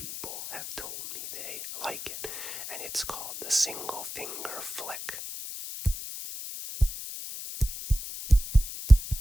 have told me they like it. And it's called the single finger flick.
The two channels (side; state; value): left; noise; hiss, 9 dB below the sound